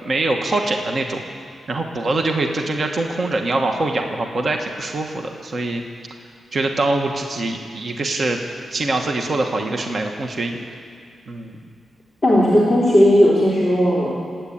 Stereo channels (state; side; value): normal; both; correlation 0.89